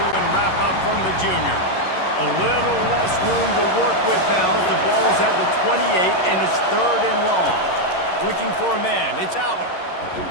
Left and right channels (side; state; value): right; late; 11 ms